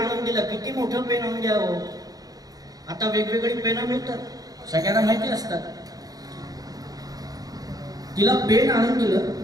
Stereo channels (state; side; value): late; left; 0.18 ms